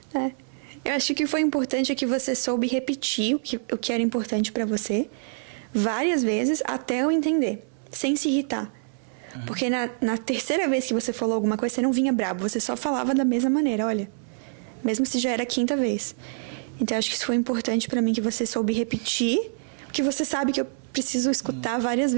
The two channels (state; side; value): silent; left; 61 dB below the other